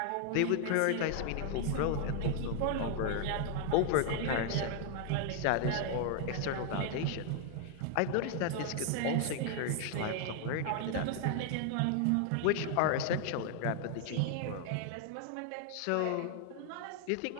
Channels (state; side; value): different; both; correlation 0.00